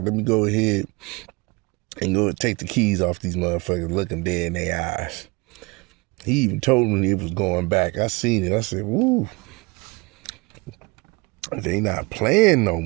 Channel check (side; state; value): left; quieter; 26.6 dB